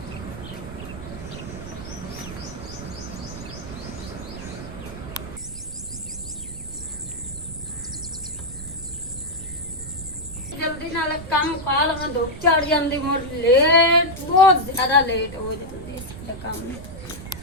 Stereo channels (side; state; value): right; noise; rumble, 12 dB below the sound